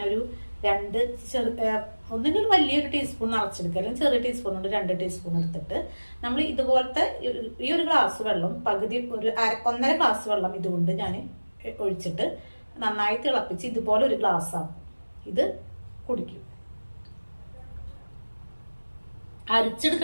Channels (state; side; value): inverted; both; correlation -1.00